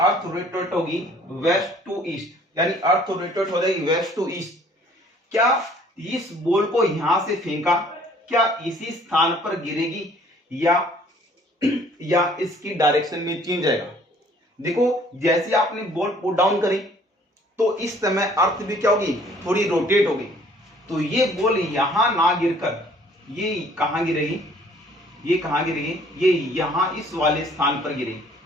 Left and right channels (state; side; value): normal; both; correlation 0.57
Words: रोटेट होगी वेस्ट टू ईस्ट, यानी अर्थ रोटेट हो जाएगी वेस्ट टू ईस्ट। क्या इस बॉल को यहां से फेंका, क्या इसी स्थान पर गिरेगी या इसकी डायरेक्शन में चेंज आएगा। देखो जैसे आपने बॉल पुट डाउन करी तो इस समय अर्थ भी क्या होगी, थोड़ी रोटेट होगी। तो ये बॉल यहां ना गिरकर ये कहां गिरेगी, ये कहां गिरेगी, ये यहां इस वाले स्थान पर गिरेगी।